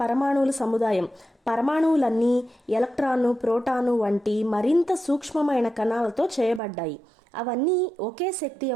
పరమాణువుల సముదాయం. పరమాణువులన్నీ ఎలక్ట్రాను, ప్రోటాను వంటి మరింత సూక్ష్మమైన కణాలతో చేయబడ్డాయి. అవన్నీ ఒకే శక్తి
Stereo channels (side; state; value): left; drops out; at 6.6 s